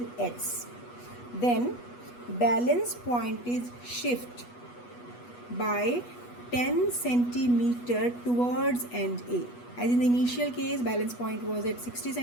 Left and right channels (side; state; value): right; late; 8.2 ms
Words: X, then balance point is shift by 10 centimeter towards end A. As in the initial case, balance point was at 60